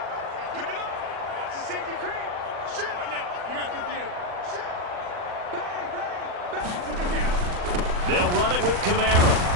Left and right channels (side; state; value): left; late; 40 ms